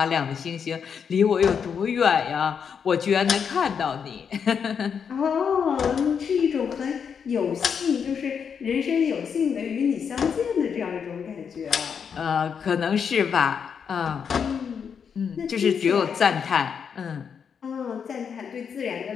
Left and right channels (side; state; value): right; quieter; 6.9 dB